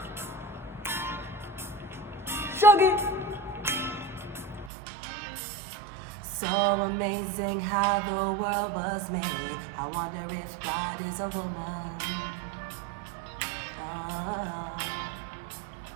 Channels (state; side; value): drops out; left; at 4.7 s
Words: Shug it. So amazing how the world was made. I wonder if God is a woman.